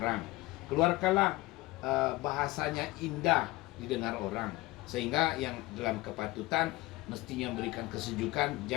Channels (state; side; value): quieter; right; 20.0 dB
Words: Keluarkanlah bahasanya indah didengar orang. Sehingga yang dalam kepatutan mestinya memberikan kesejukan,